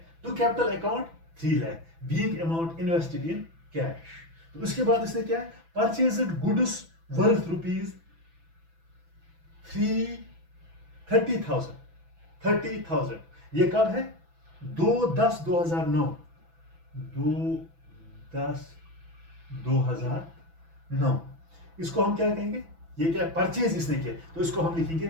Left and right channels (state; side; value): late; left; 6.0 ms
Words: to capital account 3 lakh, being amount invested in cash. तो उसके बाद इसने क्या है, परचेज्ड गुड्स वर्थ ₹30,000। ये कब है, 2/10/2009। 2/10/2009 इसको हम क्या कहेंगे, ये क्या परचेज इसने किया, तो इसको हम लिखेंगे